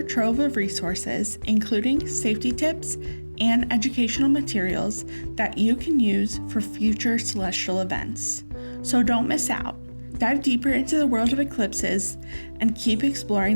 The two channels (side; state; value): both; inverted; correlation -1.00